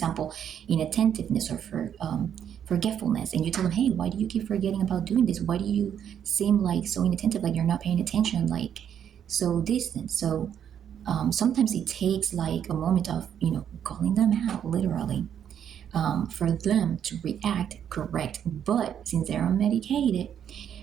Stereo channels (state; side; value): quieter; left; 9.1 dB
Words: inattentiveness or forgetfulness, and you tell them, "Hey, why do you keep forgetting about doing this? Why do you seem like so inattentive, like you're not paying attention, like so distant?" So sometimes it takes like a moment of calling them out, literally, for them to react correct. But since they're unmedicated,